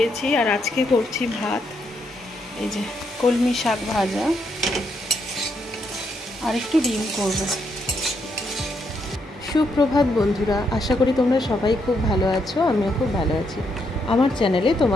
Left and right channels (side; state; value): both; normal; correlation 0.77